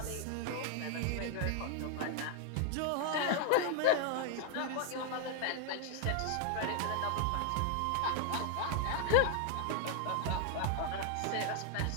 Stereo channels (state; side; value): different; both; correlation 0.00